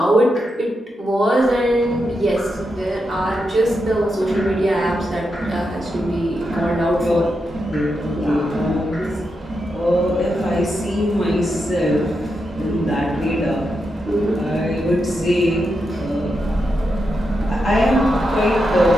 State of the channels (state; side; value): normal; both; correlation 0.85